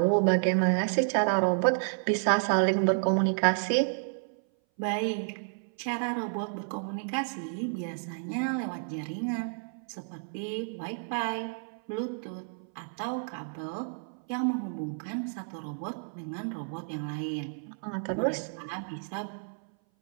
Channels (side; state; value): left; silent; 57 dB below the other